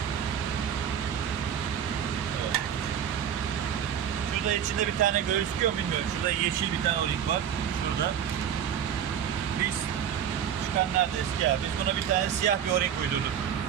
Evet. Şurada içinde bir tane gözüküyor mu bilmiyorum. Şurada yeşil bir tane o-ring var. Şurada. Biz çıkan nerede eski ya? Biz buna bir tane siyah bir o-ring uydurduk.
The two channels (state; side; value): quieter; left; 9.0 dB